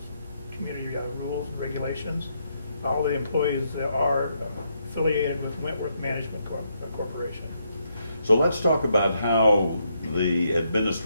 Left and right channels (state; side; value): inverted; both; correlation -0.77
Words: community rules and regulations. All the employees are affiliated with Wentworth Management Corporation. So let's talk about how the